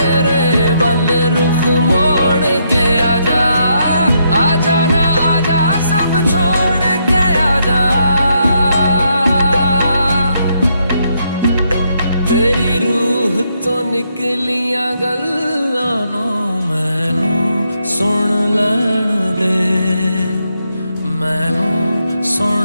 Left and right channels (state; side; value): inverted; both; correlation -0.77